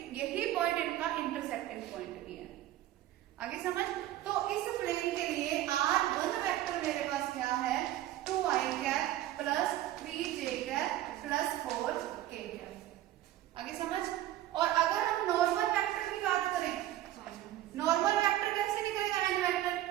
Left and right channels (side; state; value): left; quieter; 14.0 dB